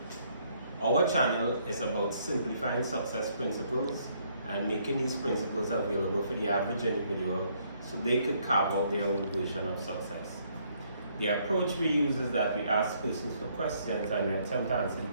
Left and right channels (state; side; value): inverted; both; correlation -0.68